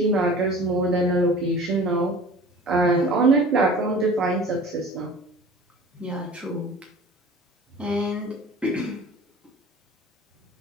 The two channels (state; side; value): normal; both; correlation 0.43